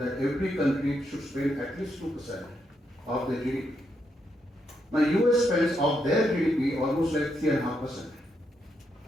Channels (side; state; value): both; normal; correlation 0.80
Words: every country should spend at least 2% of their GDP. Now US spends of their GDP almost like 3.5%,